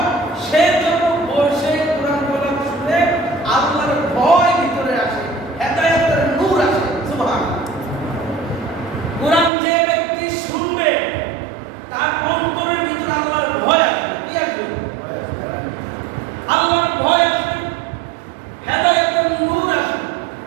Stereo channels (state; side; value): drops out; left; at 9.5 s